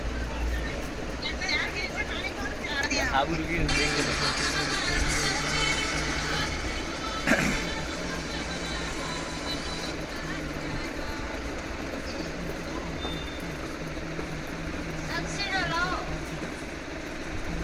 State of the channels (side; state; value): both; identical; correlation 1.00